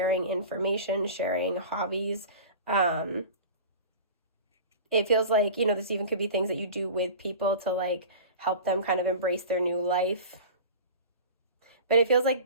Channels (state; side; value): inverted; both; correlation -0.36